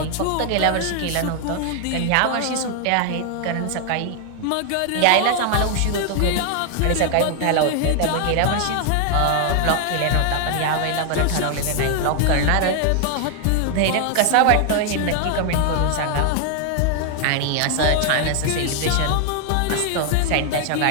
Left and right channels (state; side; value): different; both; correlation 0.00